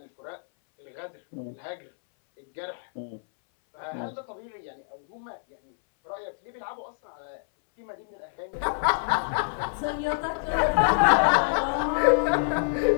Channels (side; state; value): right; silent; 60 dB below the other